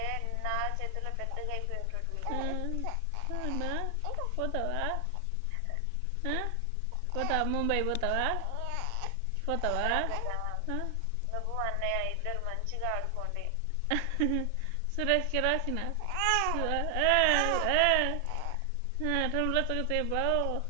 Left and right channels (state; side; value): different; both; correlation 0.00